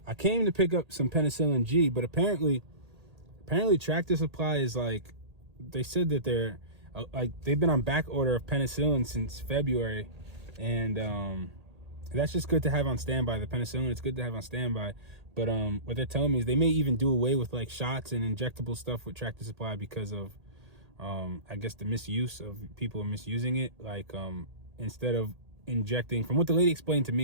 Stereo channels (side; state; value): left; late; 1.8 ms